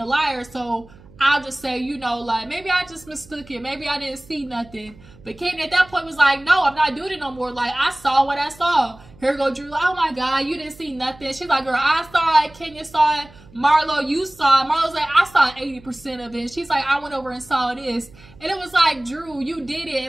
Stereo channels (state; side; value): noise; right; hum, 24 dB below the sound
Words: liar, so I'll just say, you know, like, maybe I just mistook it, maybe I didn't see nothing. But Kandi at that point was like, no, I'm not doing it no more. Like, I saw what I saw. Here go Drew. Oh my God, you didn't see nothing. She's like, girl, I saw it. Kenya saw it. Marlo, you saw it. Marlo's like, I saw 80% of it. She's like, I went over and saw this. And it was like, Drew, you did it.